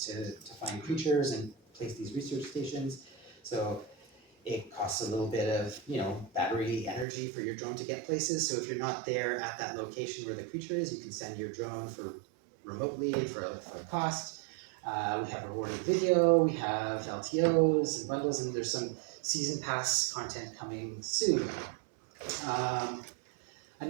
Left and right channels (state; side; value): drops out; left; at 7.1 s